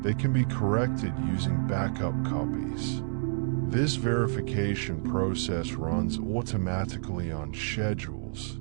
they can be corrected using backup copies. This verification process runs automatically on schedules,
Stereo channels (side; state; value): left; silent; digital silence